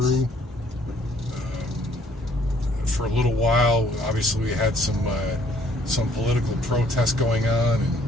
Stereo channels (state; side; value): normal; both; correlation 0.62